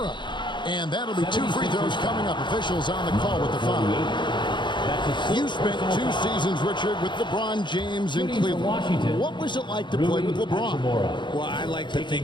And that'll be 2 free throws coming up. Officials on the call with the foul. You spent 2 seasons, Richard, with LeBron James in Cleveland. What was it like to play with LeBron? Well, I like to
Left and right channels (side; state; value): right; late; 0.23 ms